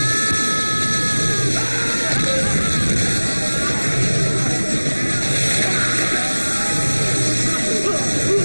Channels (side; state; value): both; inverted; correlation -1.00